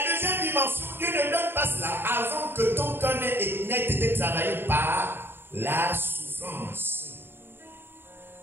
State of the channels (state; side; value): late; left; 0.11 ms